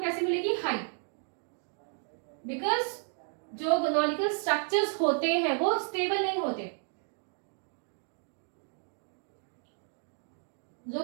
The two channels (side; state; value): left; silent; 56 dB below the other